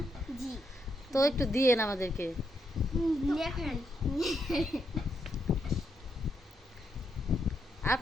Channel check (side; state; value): both; normal; correlation 0.79